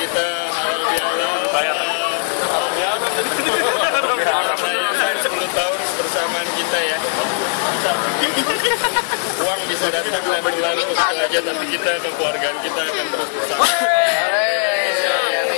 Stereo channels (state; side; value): silent; right; digital silence